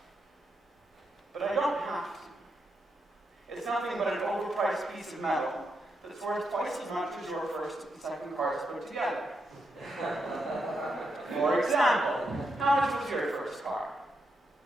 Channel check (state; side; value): normal; both; correlation 0.82